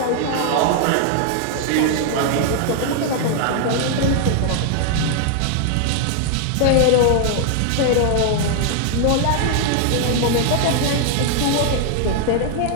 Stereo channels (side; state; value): both; different; correlation 0.00